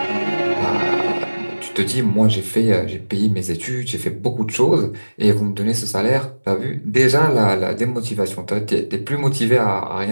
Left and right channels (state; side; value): inverted; both; correlation -1.00